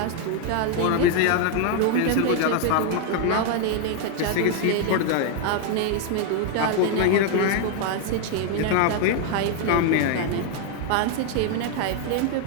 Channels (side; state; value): both; different; correlation 0.00